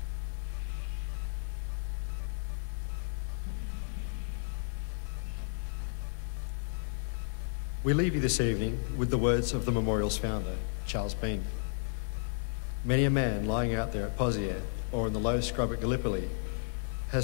We leave you this evening with the words of the memorial's founder, Charles Bean. Many a man lying out there at Pozier or in the low scrub at Gallipoli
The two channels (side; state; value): right; silent; digital silence